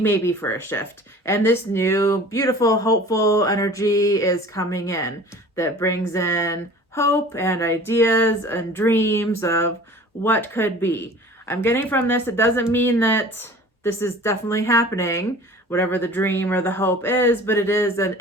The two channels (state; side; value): normal; both; correlation 0.44